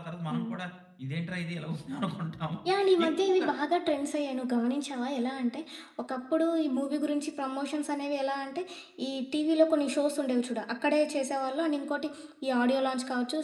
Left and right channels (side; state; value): both; identical; correlation 1.00